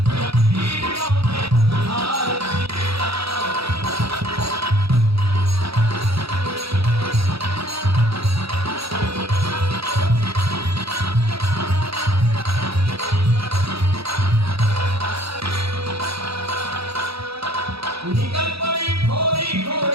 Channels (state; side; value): late; left; 0.77 ms